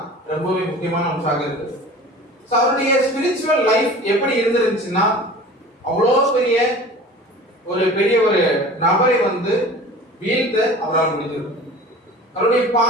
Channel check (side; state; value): both; normal; correlation 0.40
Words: ரொம்பவே முக்கியமான அம்சமாக இருக்கு. அவருடைய ஸ்பிரிச்சுவல் லைஃப் எப்படி இருந்துருந்துச்சுன்னா, அவ்வளோ பெரிய ஒரு நபரை வீழ்த்த அவரால் முடிஞ்சது. அவருடைய